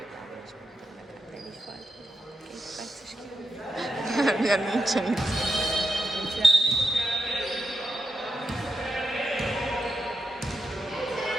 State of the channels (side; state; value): both; normal; correlation 0.87